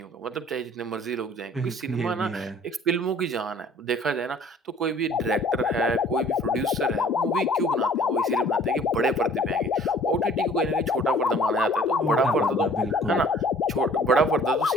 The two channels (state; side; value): normal; both; correlation 0.53